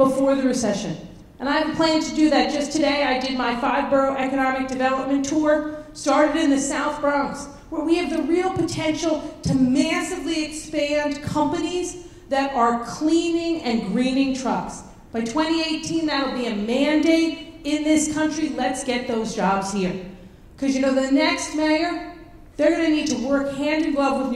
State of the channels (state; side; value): identical; both; correlation 1.00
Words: the recession. And I have a plan to do that. Just today, I did my 5-borough economic development tour, started in the South Bronx, where we have the real potential to massively expand companies that are cleaning and greening trucks. By 2018, that'll be a mandate in this country. Let's get those jobs here. Because you know, the next mayor, they're going to need to work hand in glove with